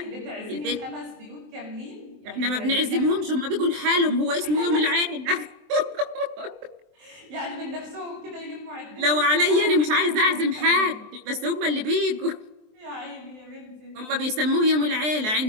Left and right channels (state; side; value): late; left; 23 ms